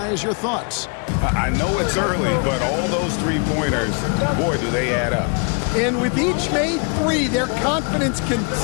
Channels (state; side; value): quieter; right; 37.6 dB